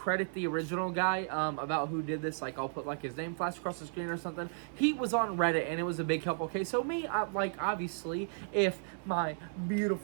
the original guy about who did this. Like, I'll put, like, his name flash across the screen or something. He was on Reddit, and it was a big help. Okay, so me, like, obviously, if my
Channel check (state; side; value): silent; left; digital silence